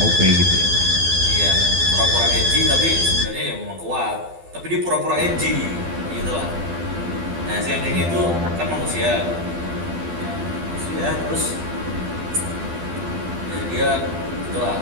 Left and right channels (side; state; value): left; late; 12 ms